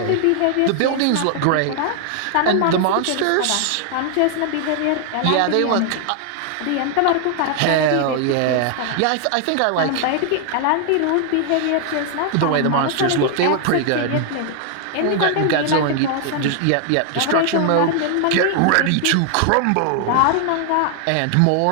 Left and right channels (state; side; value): different; both; correlation 0.00